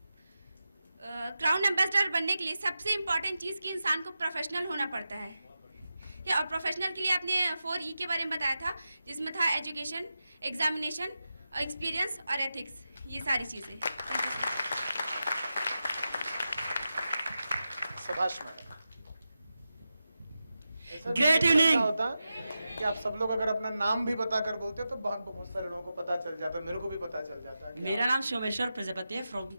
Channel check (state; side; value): inverted; both; correlation -0.91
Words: क्राउन एम्बेसडर बनने के लिए सबसे इम्पॉर्टेंट चीज़ कि इंसान को प्रोफेशनल होना पड़ता है। और प्रोफेशनल के लिए आपने 4E के बारे में बताया था, जिसमें था एजुकेशन, एग्जामिनेशन, एक्सपीरियंस और एथिक्स, ये सारी चीज़ें। शाबाश मैडम। Great evening. होता कि आप सब लोग अगर अपना नाम भी बताकर बोलते तो बहुत सारे लोगों को पता चल जाता, मेरे को भी पता चल जाता। मेरा नाम सोमेश्वर प्रजापति है, फ्रॉम